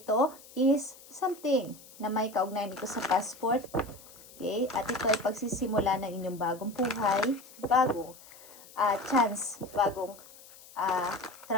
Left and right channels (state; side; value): noise; left; hiss, 21 dB below the sound